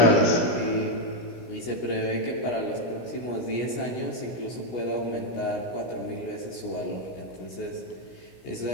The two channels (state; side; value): late; right; 16 ms